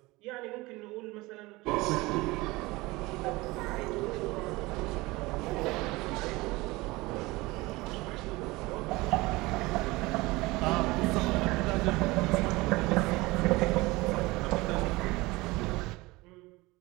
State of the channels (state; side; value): quieter; left; 21.7 dB